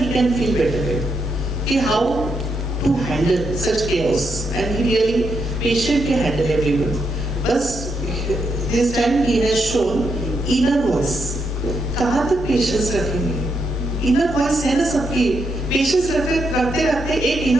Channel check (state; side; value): normal; both; correlation 0.81